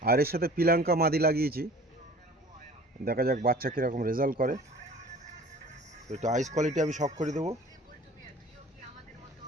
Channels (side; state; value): both; normal; correlation 0.46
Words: আর এর সাথে পিলাঙ্কা মাদি লাগিয়েছি। দেখা যাক বাচ্চা কীরকম রেজাল্ট করে। তো একটু আইস কোয়ালিটি আমি শখ করে দেবো।